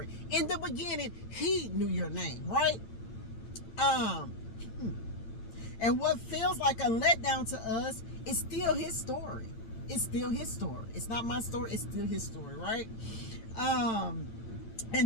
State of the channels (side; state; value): right; late; 8.9 ms